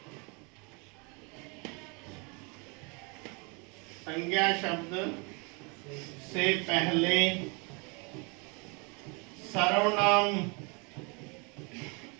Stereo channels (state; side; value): quieter; left; 31.2 dB